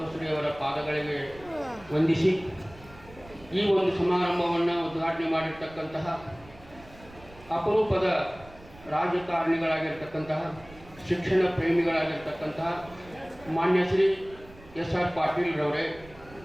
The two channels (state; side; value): noise; right; rumble, 21 dB below the sound